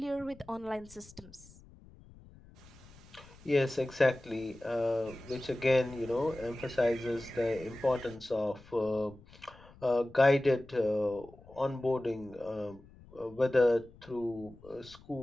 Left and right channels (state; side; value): noise; left; rumble, 23 dB below the sound